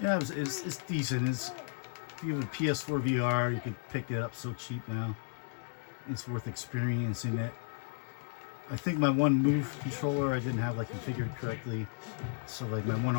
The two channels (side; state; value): right; silent; digital silence